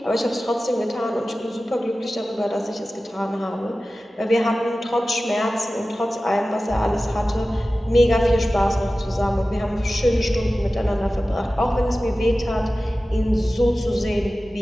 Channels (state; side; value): normal; both; correlation 0.95